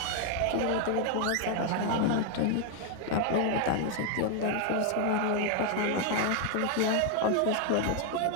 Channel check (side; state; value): both; different; correlation 0.00